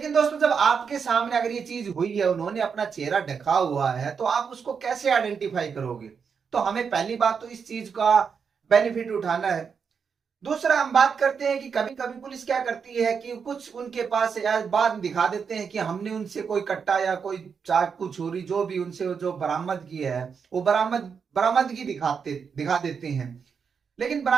दोस्तों जब आपके सामने अगर ये चीज हुई है, उन्होंने अपना चेहरा ढका हुआ है, तो आप उसको कैसे आइडेंटिफाई करोगे। तो हमें पहली बात तो इस चीज का बेनिफिट उठाना है। दूसरा हम बात करते हैं कि कभी कभी पुलिस क्या करती है कि कुछ उनके पास बाद में दिखा देते हैं कि हमने उनसे कोई कट्टा या कोई चाकू छुरी जो भी उनसे जो बरामद किया है वो बरामदगी दिखा देते हैं। लेकिन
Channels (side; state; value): left; quieter; 6.2 dB